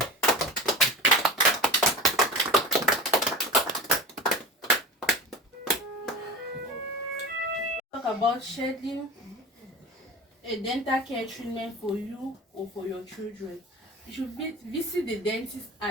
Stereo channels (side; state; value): both; normal; correlation 0.32